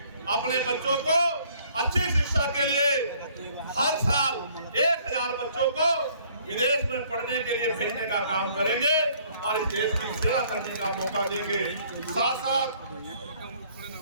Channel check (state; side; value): inverted; both; correlation -0.60